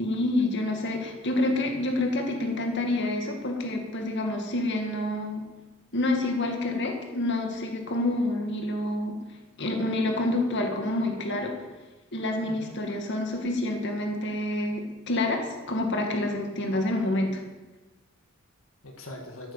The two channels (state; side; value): normal; both; correlation 0.51